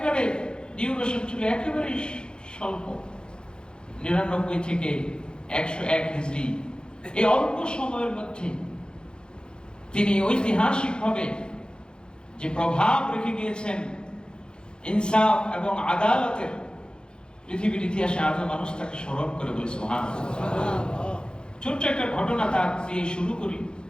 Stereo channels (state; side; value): late; right; 0.049 ms